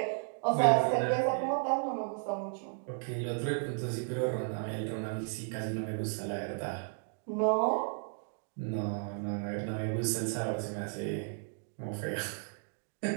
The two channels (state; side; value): silent; left; 55 dB below the other